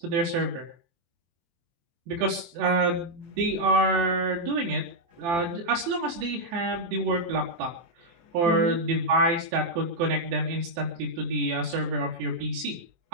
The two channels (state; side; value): late; left; 23 ms